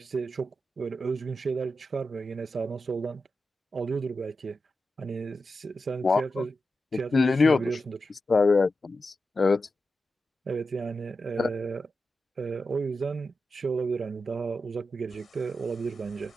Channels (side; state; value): both; normal; correlation 0.90